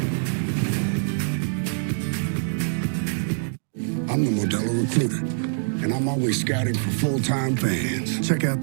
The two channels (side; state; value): left; silent; digital silence